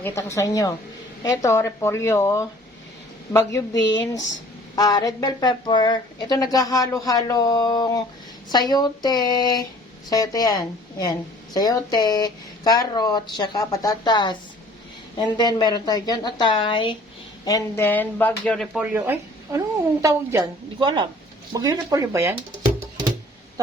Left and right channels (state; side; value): normal; both; correlation 0.52